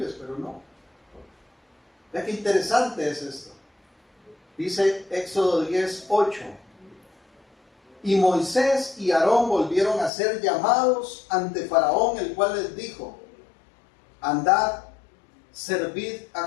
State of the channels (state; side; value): drops out; right; at 10.1 s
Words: pero no. Vea qué interesante es esto. Dice Éxodo 10, 8. Y Moisés y Aarón volvieron a ser llamados ante Faraón, el cual les dijo, andad, servid